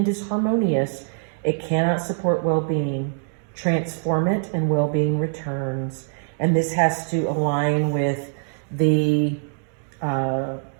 disharmonious, it cannot support well-being. Transform it and well-being returns. And this has to align with the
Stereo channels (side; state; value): left; silent; digital silence